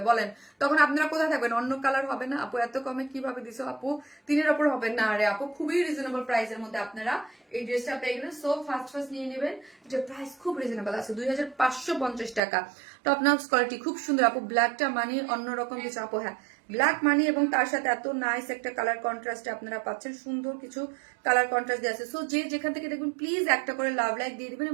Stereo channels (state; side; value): drops out; left; at 12.4 s